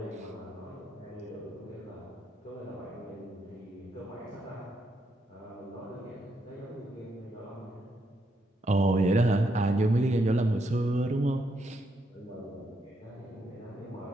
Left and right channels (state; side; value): normal; both; correlation 0.78